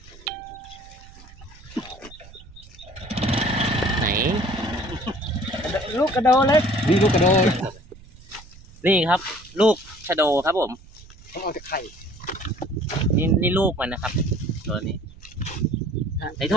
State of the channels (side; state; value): right; noise; rumble, 21 dB below the sound